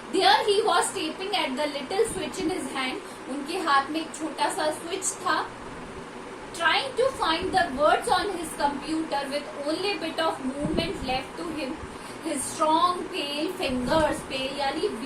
There he was tapping at the little switch in his hand। उनके हाथ में एक छोटा सा स्विच था। Trying to find the words on his computer with only bit of movement left to him। His strong pale fingers, pale यानी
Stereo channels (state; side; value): identical; both; correlation 1.00